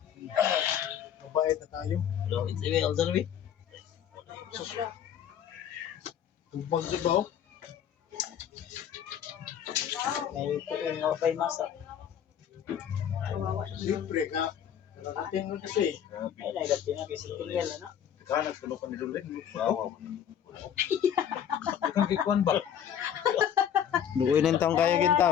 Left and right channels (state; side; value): quieter; right; 9.2 dB